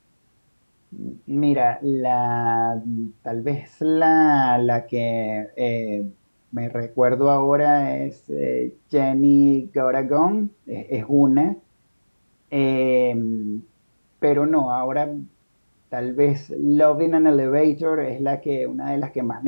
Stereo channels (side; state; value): both; inverted; correlation -1.00